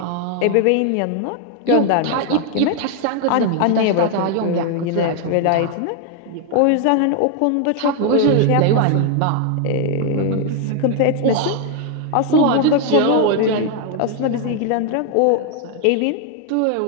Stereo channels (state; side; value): different; both; correlation 0.00